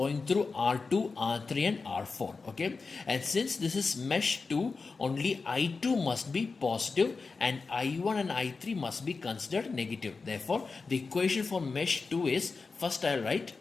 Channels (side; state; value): right; quieter; 4.4 dB